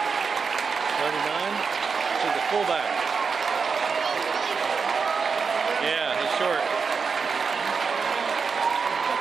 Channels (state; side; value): quieter; left; 5.4 dB